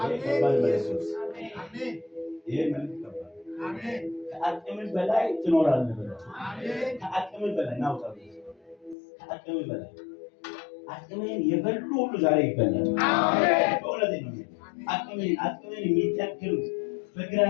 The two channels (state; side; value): drops out; right; at 9.0 s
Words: አሜን ይሄ መልክ ይቀበል አሜን ከአቅም በላይ ትኖራለህ ብለው አሜን ከአቅም በላይ ናውጣው ከአቅም በላይ አቅምን የበሉ ሁሉ ዛሬ ይበላል አሜን በእውነት ነው አቅምን የሚተክሉ